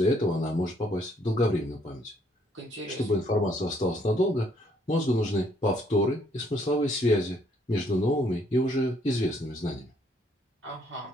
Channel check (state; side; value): normal; both; correlation 0.67